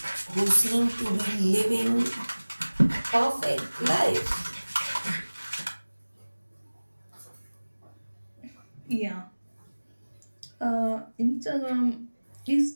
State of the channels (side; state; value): both; inverted; correlation -1.00